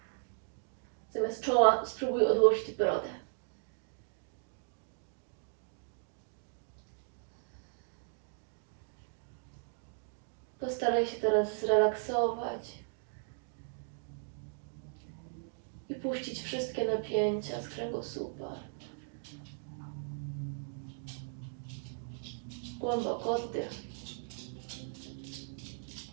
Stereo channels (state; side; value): silent; left; digital silence